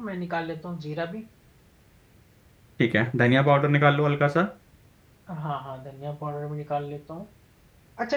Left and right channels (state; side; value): identical; both; correlation 1.00